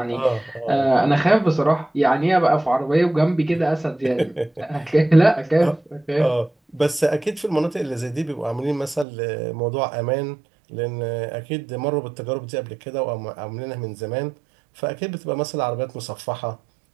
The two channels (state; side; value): drops out; left; at 9.1 s